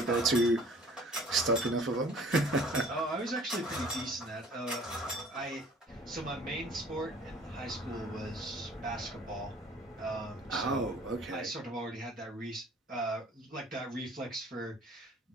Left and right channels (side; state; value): both; normal; correlation 0.52